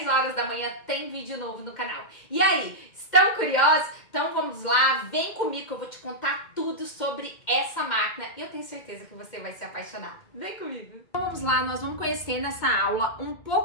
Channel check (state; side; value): late; right; 2.1 ms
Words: horas da manhã, tem vídeo novo no canal. E aí, estão curiosos? Então vamos lá, vem comigo que eu vou te contar tudo sobre essa máquina. E eu tenho certeza que você vai se apaixonar. Vem comigo! Então vamos lá, nós vamos conhecer nessa aula um